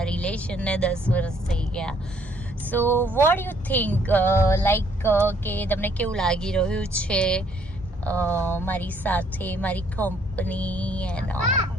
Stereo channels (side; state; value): both; normal; correlation 0.65